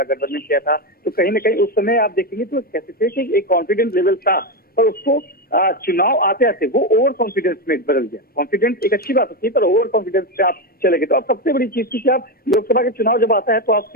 किया था, तो कहीं ना कहीं उस समय आप देखेंगे तो कह सकते हैं कि एक कॉन्फिडेंस लेवल था, पर उसको चुनाव आते आते वो ओवर कॉन्फिडेंस में बदल गया। कॉन्फिडेंस एक अच्छी बात होती है, पर ओवर कॉन्फिडेंस से आप चले गए। तो अब सबसे बड़ी चीज थी कि आप लोकसभा के चुनाव जब आता है तो आप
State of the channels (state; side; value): normal; both; correlation 0.11